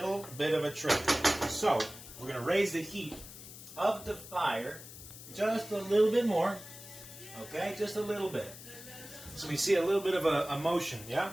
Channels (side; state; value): left; noise; hiss, 15 dB below the sound